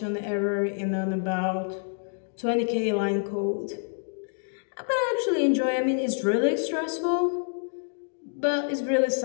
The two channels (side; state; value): right; silent; digital silence